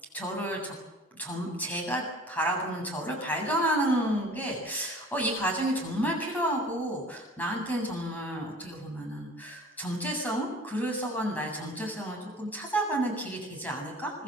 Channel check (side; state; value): both; normal; correlation 0.45